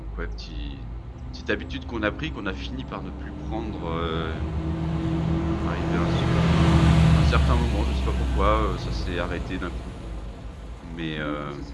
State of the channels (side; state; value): both; identical; correlation 1.00